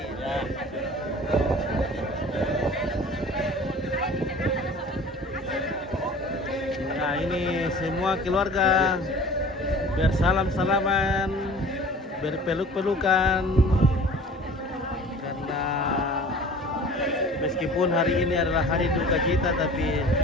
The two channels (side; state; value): both; normal; correlation 0.44